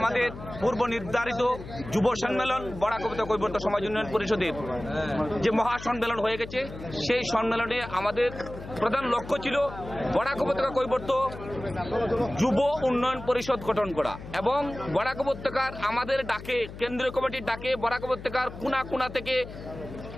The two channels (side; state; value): left; noise; hum, 13 dB below the sound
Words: পূর্ব নির্ধারিত যুব সম্মেলন বরাক উপত্যকা কৈবর্ত সমাজ উন্নয়ন পরিষদের যে মহা সম্মেলন হয়ে গেছে, সেই সম্মেলনে আমাদের প্রধান লক্ষ্য ছিল বরাক উপত্যকা কৈবর্ত যুব উন্নয়ন পরিষদ গঠন করা এবং বরাক উপত্যকার আমাদের ডাকে, কেন্দ্রীয় কমিটির ডাকে বরাক উপত্যকার কোনা কোনা থেকে